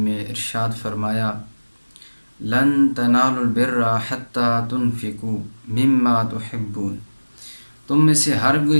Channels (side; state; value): both; inverted; correlation -1.00